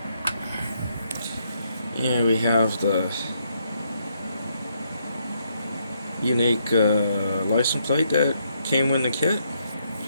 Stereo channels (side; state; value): both; inverted; correlation -0.74